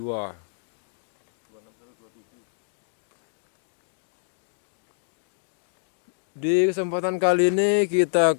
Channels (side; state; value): right; silent; digital silence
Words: Di kesempatan kali ini kita